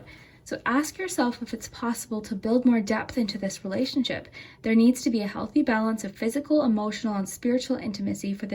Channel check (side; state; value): both; identical; correlation 1.00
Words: So ask yourself if it's possible to build more depth into this relationship. There needs to be a healthy balance of physical, emotional, and spiritual intimacy for